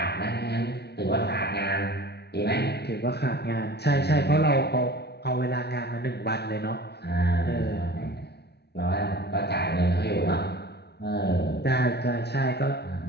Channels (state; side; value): late; right; 0.48 ms